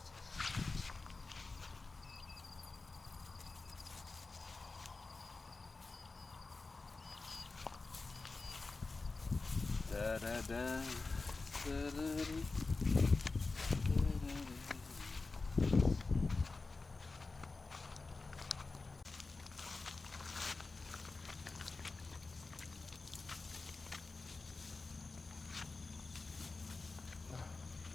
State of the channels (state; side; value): quieter; right; 3.8 dB